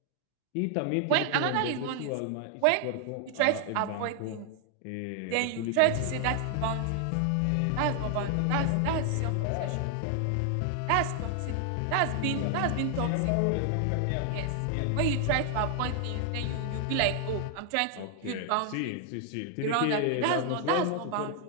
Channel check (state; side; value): different; both; correlation 0.00